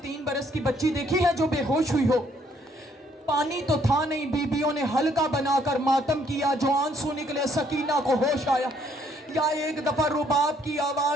बरस की बच्ची देखी है जो बेहोश हुई हो? पानी तो था नहीं, बीबियों ने हल्का बनाकर मातम किया, जो आंसू निकले सकीना को होश आया। या एक दफा रुबाब की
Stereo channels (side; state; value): both; normal; correlation 0.67